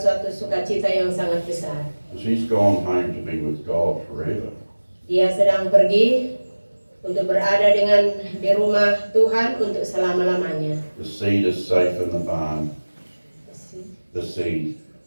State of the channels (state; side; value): inverted; both; correlation -1.00